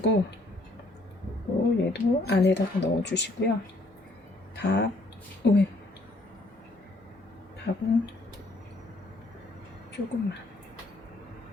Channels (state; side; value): normal; both; correlation 0.66